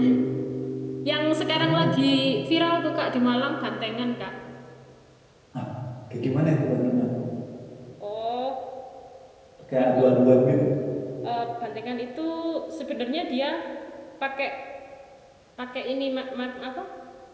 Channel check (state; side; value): identical; both; correlation 1.00